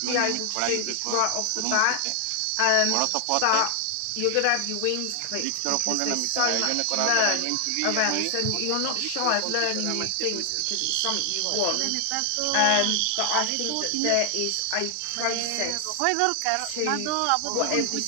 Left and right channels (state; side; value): different; both; correlation 0.00